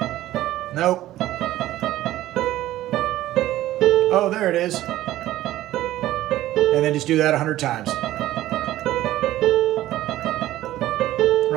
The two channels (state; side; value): quieter; left; 14.8 dB